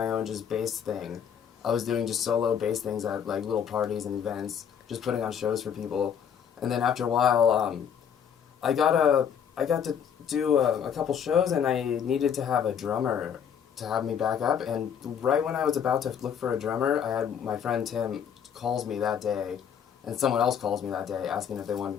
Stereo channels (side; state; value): right; quieter; 8.0 dB